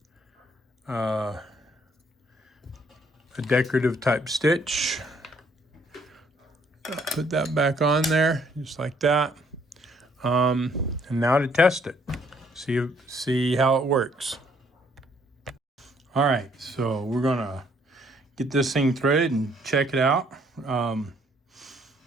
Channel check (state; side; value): normal; both; correlation 0.65